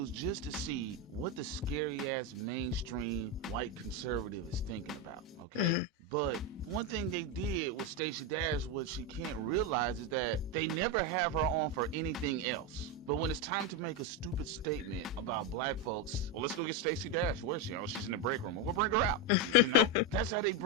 just to see what the scary ass mainstream white conservative is thinking about, okay? Mm-hmm. But one thing they did with Stacey Dash, what she can't realize is that they never have her on for anything else. But when it's time to make a stupid statement about black folks, well, let's go get Stacey Dash. Where's she? Oh, she's in the break room. Well, we'll bring her out. That's how they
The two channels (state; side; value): normal; both; correlation 0.09